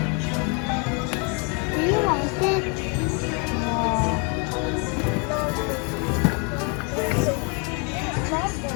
Do you like it?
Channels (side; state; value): right; quieter; 34.0 dB